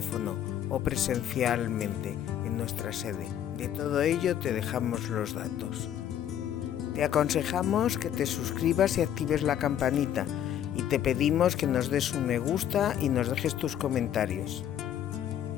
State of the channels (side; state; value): right; quieter; 10.3 dB